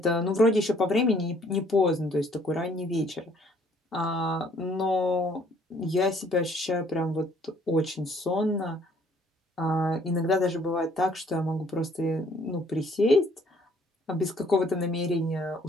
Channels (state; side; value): normal; both; correlation 0.62